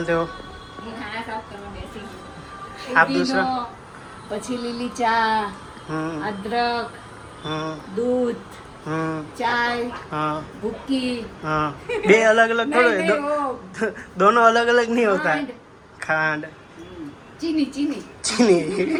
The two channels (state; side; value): identical; both; correlation 1.00